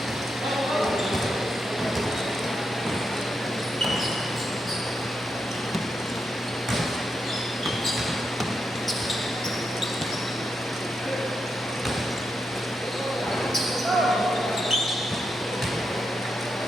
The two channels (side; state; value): both; normal; correlation 0.84